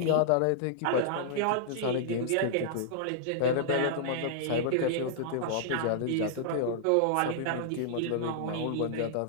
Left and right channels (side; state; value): both; different; correlation -0.01